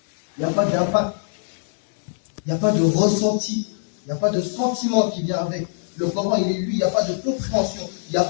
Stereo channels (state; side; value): silent; right; digital silence